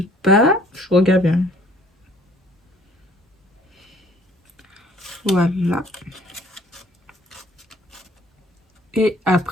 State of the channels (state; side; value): normal; both; correlation 0.58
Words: bas. Je regarde bien. Voilà. Et